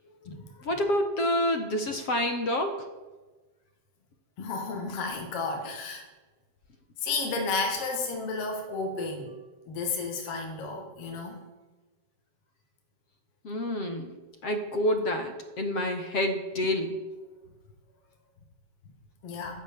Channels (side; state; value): right; late; 7.5 ms